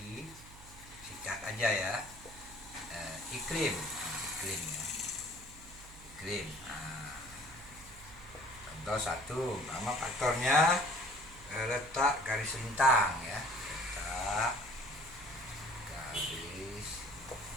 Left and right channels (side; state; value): right; noise; hum, 18 dB below the sound